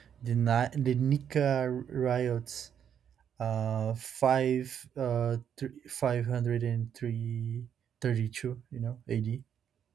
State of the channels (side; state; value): left; quieter; 8.6 dB